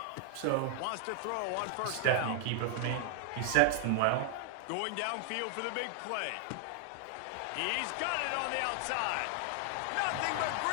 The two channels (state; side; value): different; both; correlation 0.00